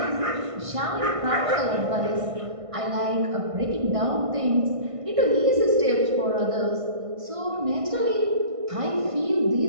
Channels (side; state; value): left; late; 1.5 ms